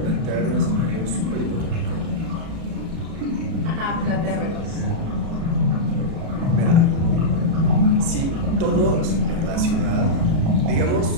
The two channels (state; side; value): late; left; 36 ms